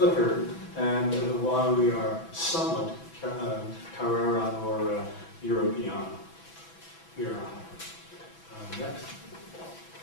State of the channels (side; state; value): right; late; 6.1 ms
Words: and why we are somewhat Carrera or European. We are next.